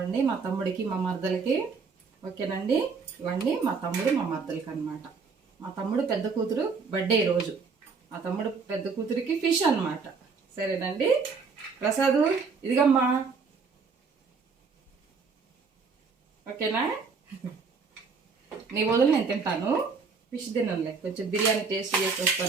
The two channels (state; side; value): quieter; left; 5.0 dB